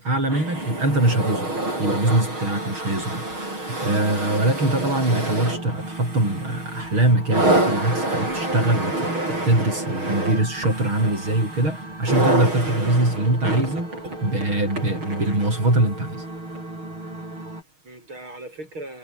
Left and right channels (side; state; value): left; late; 6.4 ms